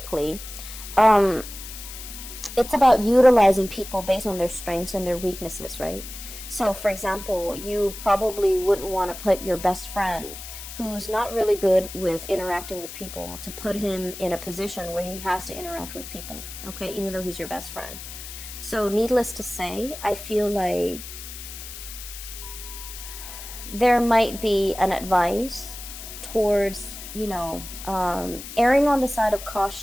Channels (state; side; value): noise; left; hiss, 12 dB below the sound